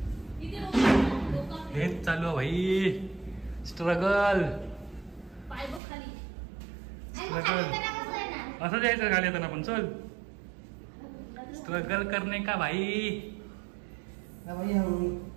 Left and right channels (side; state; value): left; drops out; at 5.8 s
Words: हेच चालू आहे भाई. स्ट्रगल असं जायचं खाली येताना पण. चल स्ट्रगल करणे का भाई.